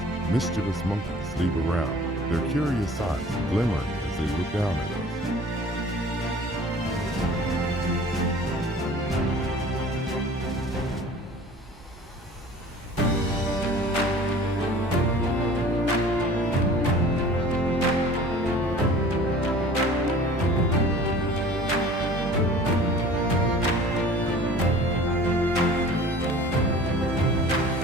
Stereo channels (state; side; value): normal; both; correlation 0.46